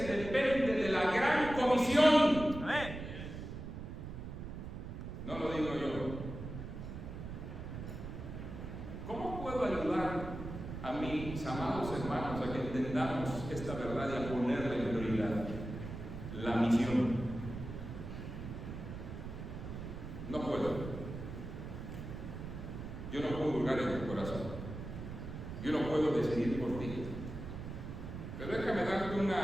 depende de la gran comisión. Amén. No lo digo yo. ¿Cómo puedo ayudar a mis amados hermanos a que entendamos esta verdad y a ponerle en prioridad la misión? No puedo. Yo no puedo hurgar en tu corazón. Yo no puedo decidir por ti. Pero déjame darte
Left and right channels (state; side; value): noise; right; rumble, 8 dB below the sound